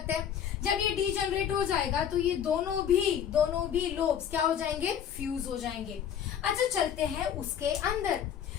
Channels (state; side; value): quieter; right; 9.0 dB